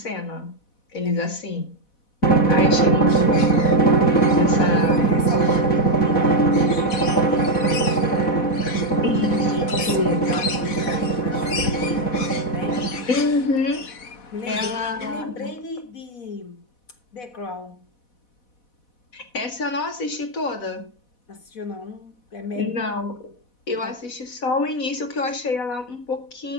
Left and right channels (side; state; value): right; late; 4.1 ms